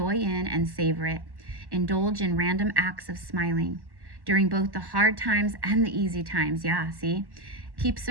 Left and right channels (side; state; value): left; late; 1.1 ms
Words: in and savor it. Indulge in random acts of smiling during both the hard times and the easy times. Yeah, see? Keep